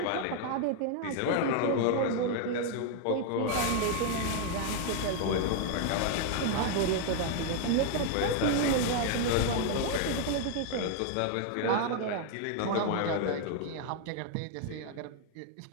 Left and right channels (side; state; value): both; different; correlation 0.00